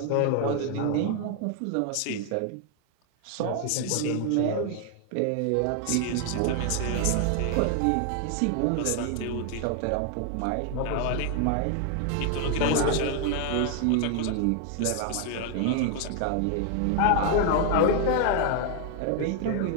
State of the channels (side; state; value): both; different; correlation 0.00